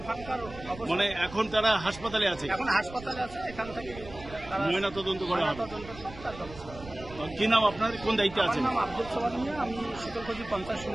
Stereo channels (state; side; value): noise; right; rumble, 16 dB below the sound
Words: খারাপ অবস্থা। মানে এখন তারা হাসপাতালে আছে? এখন হাসপাতালে আছে। এখান থেকে ময়না তদন্ত করা হবে। কি নাম আপনার, কোন দায়িত্বে আছেন? আমার নাম আব্দুল সোবান মিয়া, আমি শীতলকুচি পঞ্চায়েত